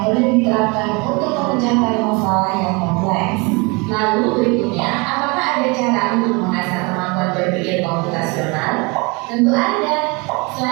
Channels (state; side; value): quieter; left; 28.4 dB